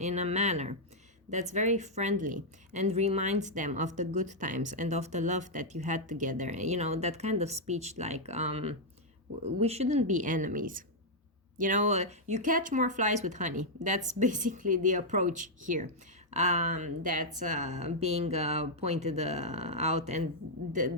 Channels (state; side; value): normal; both; correlation -0.04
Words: a manner that's very friendly and reminds them of the good times and of the love that you had together. You know, that kind of speech like, we shouldn't be enemies. You know, you catch more flies with honey. That's basically the approach here. That's being pointed out, and